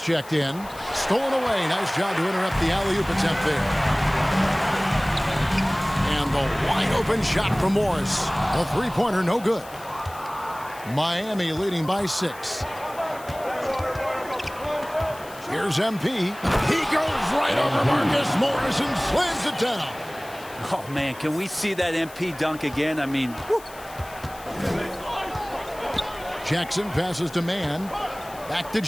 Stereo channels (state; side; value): noise; left; hiss, 19 dB below the sound